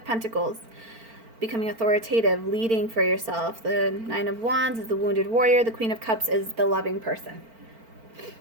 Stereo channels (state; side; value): late; left; 4.4 ms